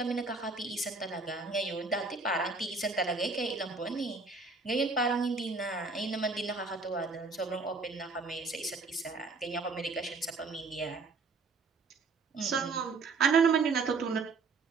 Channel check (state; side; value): quieter; left; 4.2 dB